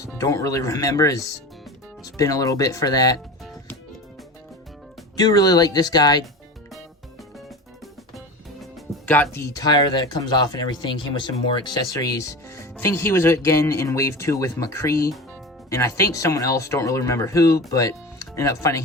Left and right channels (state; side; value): normal; both; correlation 0.30